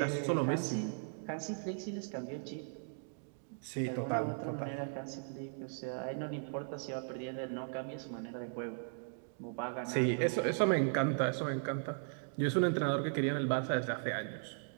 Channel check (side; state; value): left; silent; digital silence